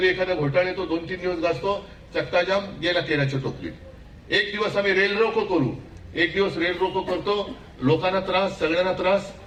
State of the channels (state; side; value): identical; both; correlation 1.00